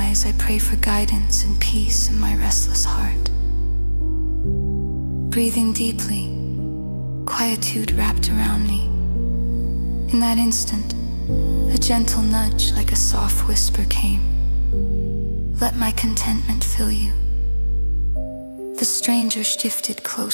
I pray for guidance and peace in my restless heart. Breathing deeply, quietude wrapped around me. In that instant, a gentle nudge like a soft whisper came. Let my contentment fill you. The stranger shifted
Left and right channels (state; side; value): inverted; both; correlation -1.00